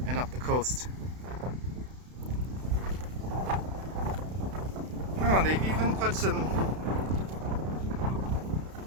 and up the coast. Oh, they've even put some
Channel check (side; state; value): left; late; 32 ms